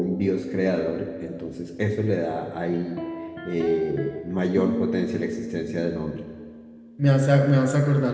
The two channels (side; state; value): both; identical; correlation 1.00